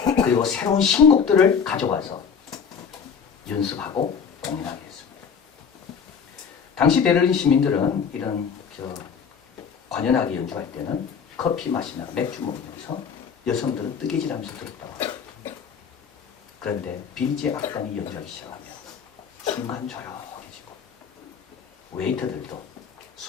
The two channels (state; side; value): quieter; right; 6.6 dB